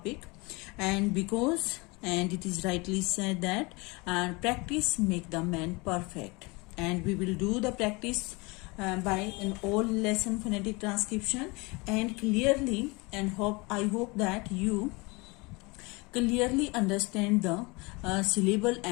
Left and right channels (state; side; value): quieter; right; 26.3 dB